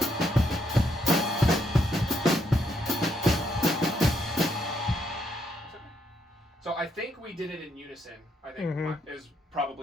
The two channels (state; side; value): normal; both; correlation 0.75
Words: So I think we did it in unison. I think is